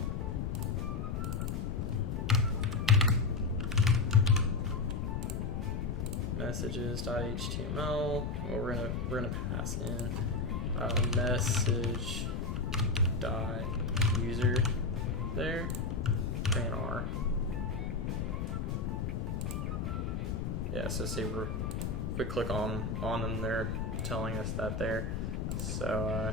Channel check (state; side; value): noise; left; rumble, 1 dB below the sound